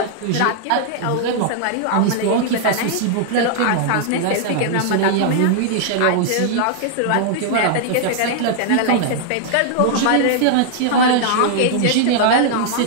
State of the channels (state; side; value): different; both; correlation -0.01